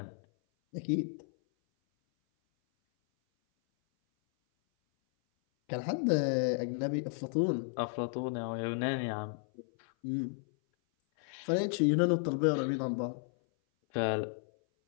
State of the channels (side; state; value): right; silent; 56 dB below the other